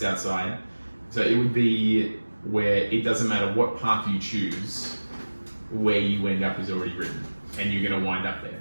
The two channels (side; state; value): both; inverted; correlation -1.00